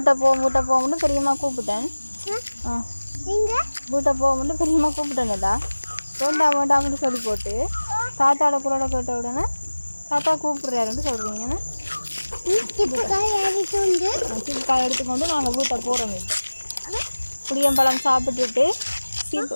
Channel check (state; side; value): inverted; both; correlation -1.00